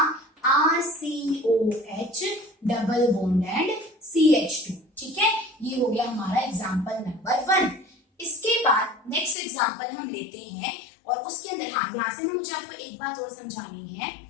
RCOH double bond and CH2। ठीक है, ये हो गया हमारा एग्जाम्पल नंबर 1। इसके बाद नेक्स्ट एग्जाम्पल हम लेते हैं, और उसके अंदर यहाँ से मुझे आपको एक बात और समझानी है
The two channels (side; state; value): right; drops out; at 9.3 s